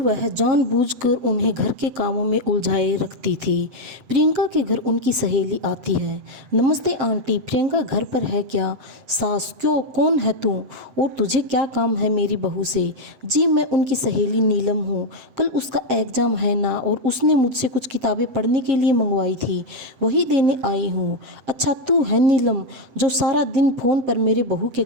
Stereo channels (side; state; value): left; late; 7.8 ms